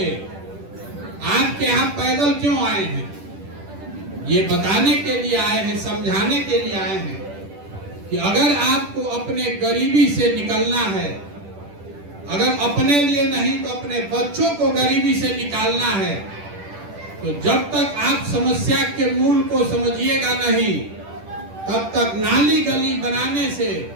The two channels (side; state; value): left; late; 10 ms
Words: आपके यहाँ पैदल क्यों आए हैं? ये बताने के लिए आए हैं, समझाने के लिए आए हैं कि अगर आपको अपने गरीबी से निकलना है, अगर अपने लिए नहीं तो अपने बच्चों को गरीबी से निकालना है, तो जब तक आप समस्या के मूल को समझिएगा नहीं, तब तक नाली गली बनाने से,